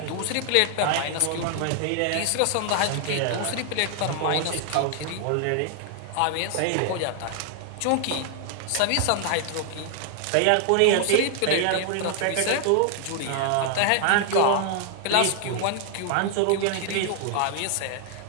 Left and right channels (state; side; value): different; both; correlation 0.00